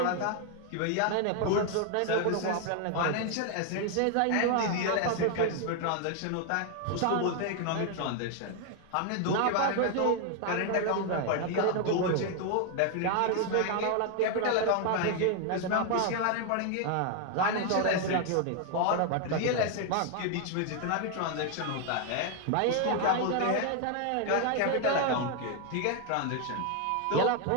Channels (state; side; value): different; both; correlation 0.00